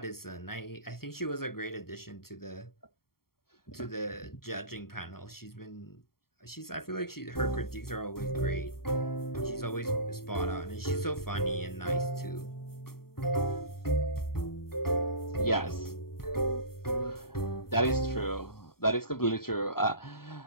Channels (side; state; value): right; late; 0.93 ms